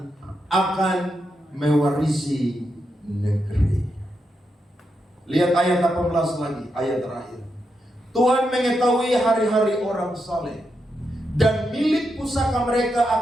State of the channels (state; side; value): normal; both; correlation 0.84